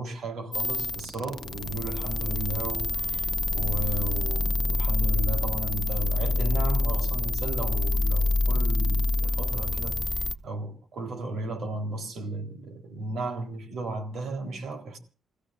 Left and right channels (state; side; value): normal; both; correlation 0.88